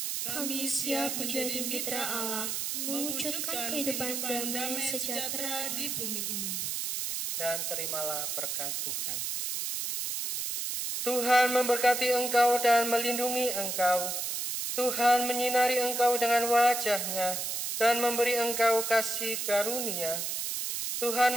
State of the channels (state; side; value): noise; right; hiss, 2 dB below the sound